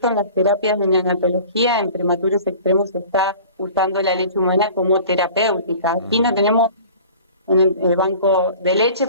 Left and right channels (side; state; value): both; inverted; correlation -0.44